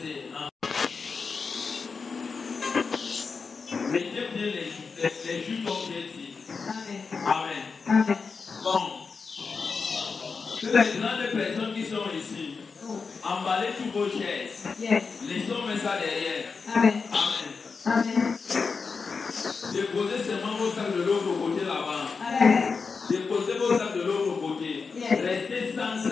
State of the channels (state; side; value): quieter; right; 5.0 dB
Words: Mettez bien les jus comme j'ai dit. Amen. Amen. Amen. Bon. Que les grandes personnes qui sont ici, emballez toutes vos chaises. Yes. Laissons mettre ça derrière. Amen. Amen. Amen. Déposez seulement vos sacs de l'autre côté là-bas. Amen. Déposez vos sacs de l'autre côté. Yes. Restez sans